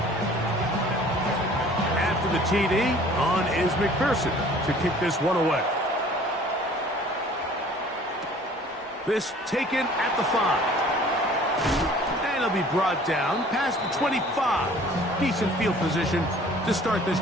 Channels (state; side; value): normal; both; correlation 0.51